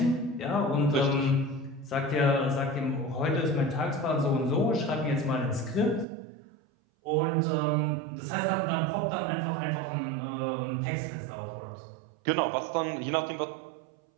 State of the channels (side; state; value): left; drops out; at 6.1 s